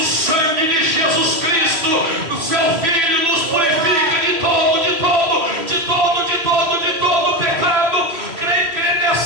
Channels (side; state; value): left; late; 3.1 ms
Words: sangue de Jesus Cristo, o seu Filho, nos purifica de todo, de todo, de todo, de todo, de todo pecado. Crê